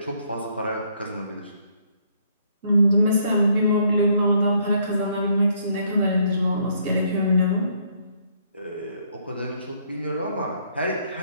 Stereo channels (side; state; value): both; inverted; correlation -0.68